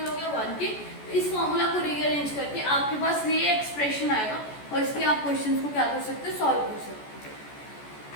हो गया, 1 के। इस फॉर्मूला को रीअरेंज करके आपके पास ये एक्सप्रेशन आएगा और इसके आप क्वेश्चंस को क्या कर सकते हो, सॉल्व कर सकते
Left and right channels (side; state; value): right; late; 14 ms